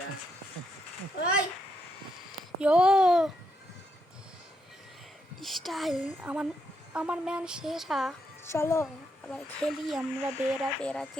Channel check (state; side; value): normal; both; correlation 0.79